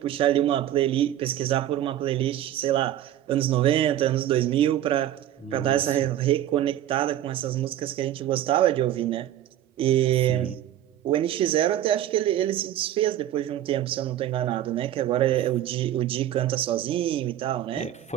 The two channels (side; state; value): left; quieter; 12.0 dB